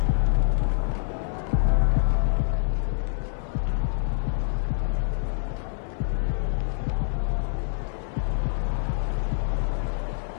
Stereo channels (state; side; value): silent; right; 61 dB below the other